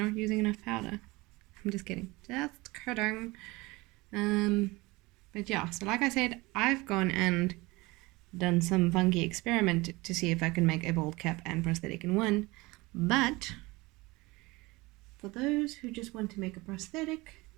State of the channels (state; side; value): quieter; left; 22.5 dB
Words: not using enough powder. I'm just kidding. Just kidding. But yeah, so like I said, I've gone and done some funky experiment to see if I can make a bald cap and prosthetic in one. But for those who just want to make a prosthetic,